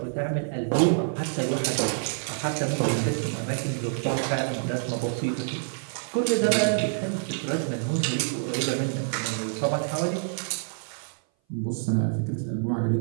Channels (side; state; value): left; silent; 57 dB below the other